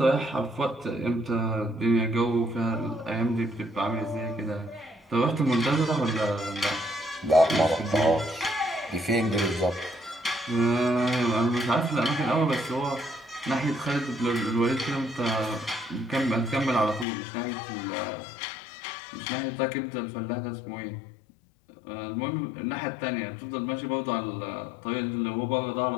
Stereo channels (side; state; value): right; drops out; at 17.1 s